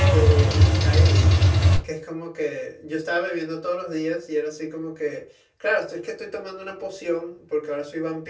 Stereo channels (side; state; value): both; identical; correlation 1.00